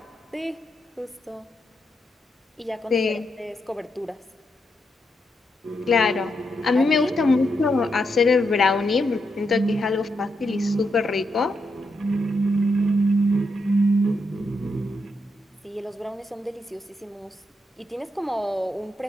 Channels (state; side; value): normal; both; correlation 0.82